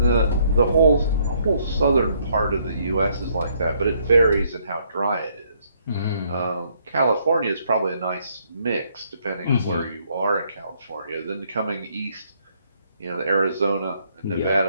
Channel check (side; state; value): both; inverted; correlation -0.69